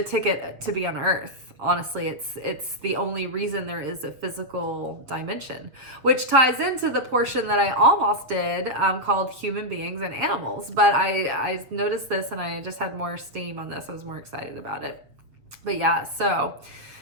ticket to be on earth. Honestly, it's the only reason there is a physical dimension, which ties into the portion that I almost did called human beings and animals. But I noticed this and I just had more steam on this. I was more excited about it. But yeah, so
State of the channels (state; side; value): late; left; 7.1 ms